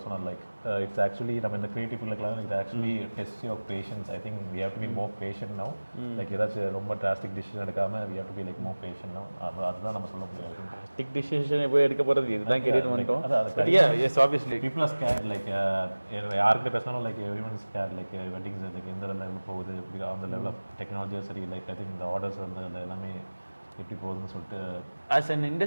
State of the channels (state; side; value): inverted; both; correlation -1.00